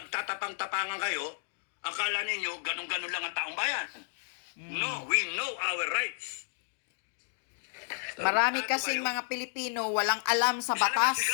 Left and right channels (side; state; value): right; silent; digital silence